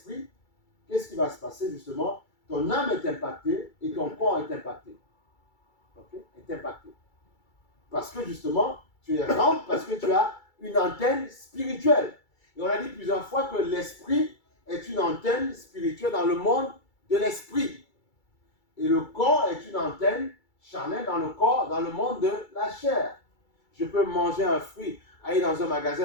qu'est-ce qui va se passer justement? Ton âme est impactée et ton corps est impacté. Okay? Est impacté. Parce que justement, tu es rempli, parce que tu as une antenne spirituelle. Et on a dit plusieurs fois que l'esprit est une antenne spirituelle dans le monde de l'esprit. Et le corps est une antenne charnelle dans le corps, dans le monde de la chair. Je peux manger un fruit, aller dans un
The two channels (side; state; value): right; late; 2.3 ms